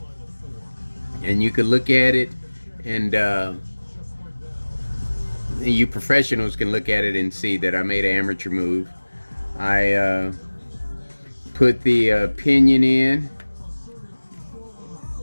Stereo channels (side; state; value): both; inverted; correlation -1.00